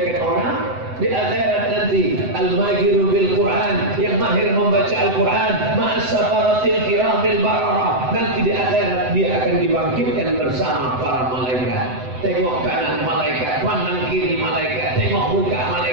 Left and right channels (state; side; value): late; left; 7.9 ms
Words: orang, di akhirat nanti al-mahiru bil Quran, yang mahir membaca Al-Quran, ma'as-safaratil kiramil bararah. Nanti di akhirat dia akan dibangkitkan bersama para malaikat. Tengok kanan malaikat, pandang kiri malaikat, tengok muka